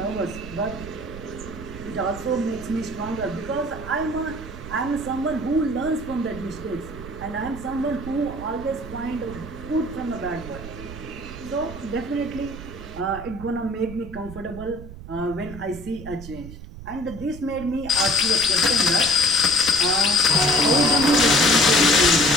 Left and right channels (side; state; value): right; noise; rumble, 13 dB below the sound